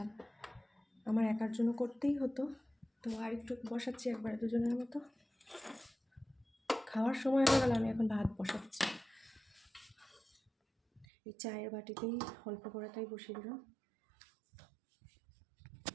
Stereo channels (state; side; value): drops out; left; at 11.1 s